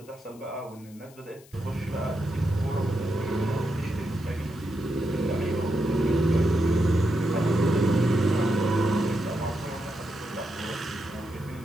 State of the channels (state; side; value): noise; left; hiss, 25 dB below the sound